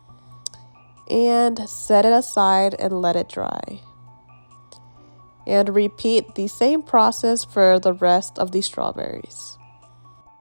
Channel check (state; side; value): inverted; both; correlation -1.00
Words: and set it aside and let it dry. And repeat the same process for the rest of the strawberries.